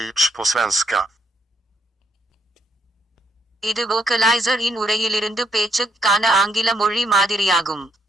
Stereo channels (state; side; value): normal; both; correlation 0.75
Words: på svenska. இது vocalizer இன் உரையிலிருந்து பேச்சுக்கான ஆங்கில மொழி மாதிரியாகும்.